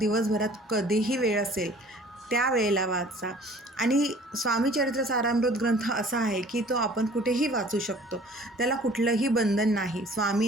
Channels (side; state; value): both; normal; correlation 0.51